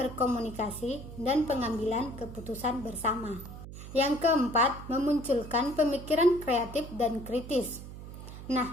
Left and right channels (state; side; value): noise; right; hum, 12 dB below the sound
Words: dan pengambilan keputusan bersama. Yang keempat, memunculkan pemikiran kreatif dan kritis.